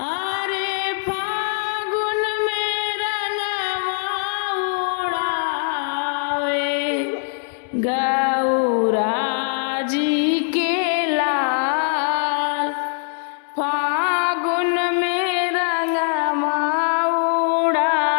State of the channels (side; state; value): right; silent; 64 dB below the other